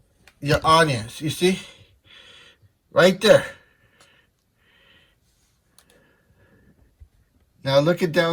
Your audience. You see? Right there. Now look at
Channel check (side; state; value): both; identical; correlation 1.00